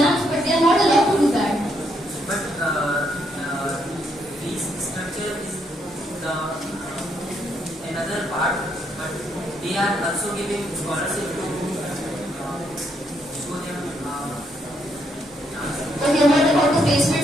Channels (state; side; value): normal; both; correlation 0.75